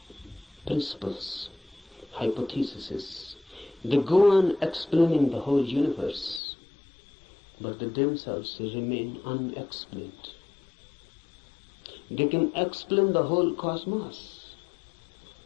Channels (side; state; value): right; drops out; at 6.4 s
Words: principles, hypotheses. They go on explaining the whole universe, but they themselves remain unexplained. They can explain the whole cosmos.